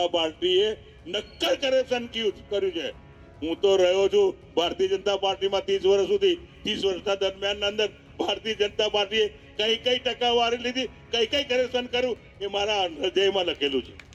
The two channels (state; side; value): identical; both; correlation 1.00